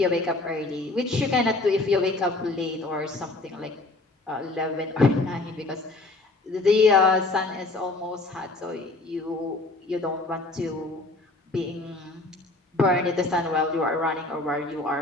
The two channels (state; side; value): quieter; right; 3.1 dB